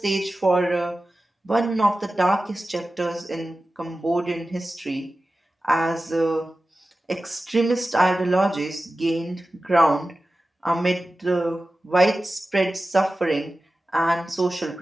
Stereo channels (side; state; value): both; normal; correlation 0.95